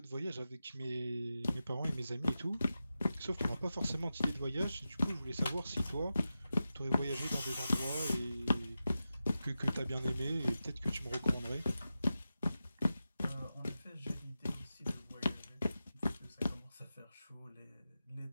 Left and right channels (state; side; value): inverted; both; correlation -0.92